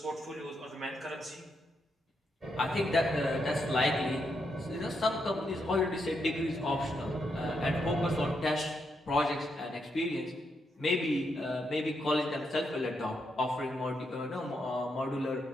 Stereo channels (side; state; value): both; normal; correlation 0.81